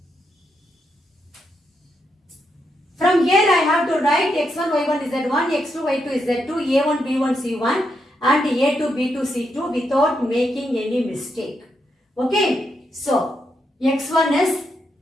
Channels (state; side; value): normal; both; correlation 0.81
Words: From here I have to write x1, y1, z1, x2, y2, z2, a1, b1, c1 and a2, b2, c2 without making any mistake. Okay, so x1 is